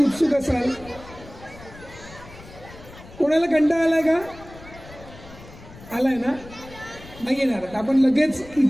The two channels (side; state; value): left; noise; rumble, 18 dB below the sound